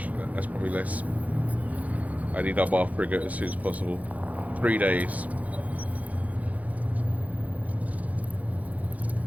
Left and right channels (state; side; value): late; left; 0.073 ms